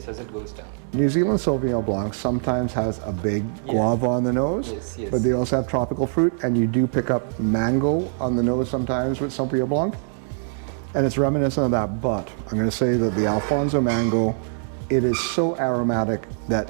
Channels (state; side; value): silent; left; 63 dB below the other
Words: as it goes down. New Zealand Sauvignon Blanc sometimes has a big guava on the nose, Yes, yes. but they also have tropical fruit, and you do pick up mango on the nose sometimes with Sauvignon Blanc, and it's reminiscent of that. But I'm going to say that the Alfonso mango, it is so aromatic that